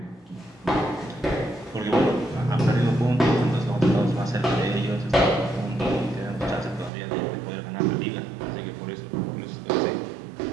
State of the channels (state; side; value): drops out; left; at 6.9 s